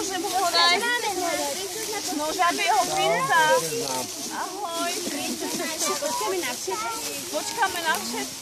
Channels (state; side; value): identical; both; correlation 1.00